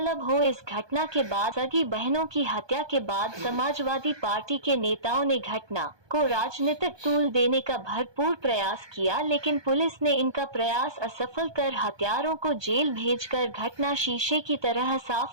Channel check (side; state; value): left; late; 1.2 ms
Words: हो, इस घटना के बाद सगी बहनों की हत्या के बाद समाजवादी पार्टी के नेताओं ने घटना को राजनीतिक तूल देने का भरपूर प्रयास किया, लेकिन पुलिस ने इनका प्रयास असफल कर हत्यारों को जेल भेजकर घटना शीशे की तरह